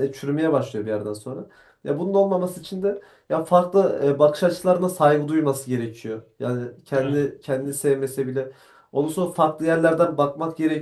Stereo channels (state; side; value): identical; both; correlation 1.00